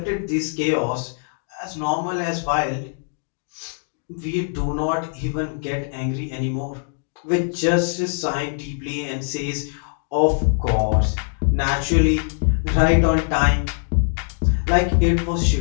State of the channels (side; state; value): right; silent; digital silence